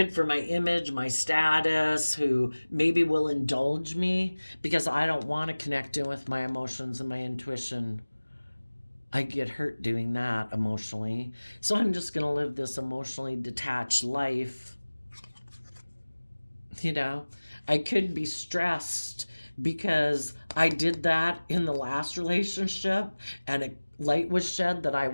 for my image, my status, who maybe will indulge me because I don't want to connect in with my emotions and my intuition. I get hurt doing that emotionally. So I'm just going to live this emotionally detached life. You know, I could be stressed because I did that in the last relationship and a light was shed that I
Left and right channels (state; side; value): inverted; both; correlation -1.00